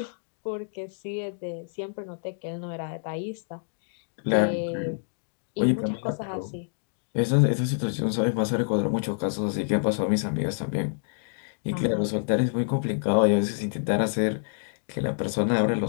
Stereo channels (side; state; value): right; silent; digital silence